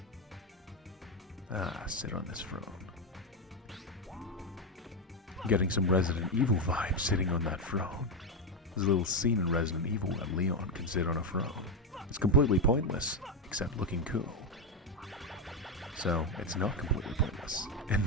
Ah, sit on this throne. Getting some Resident Evil vibes sitting on that throne. There's a little scene in Resident Evil where Leon can sit on a throne. It's completely pointless, except looking cool. So, it's not completely pointless, in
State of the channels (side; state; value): both; normal; correlation 0.09